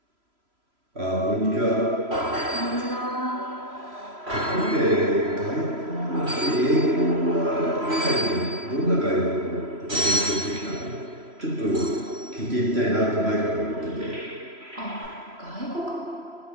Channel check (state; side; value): late; left; 3.0 ms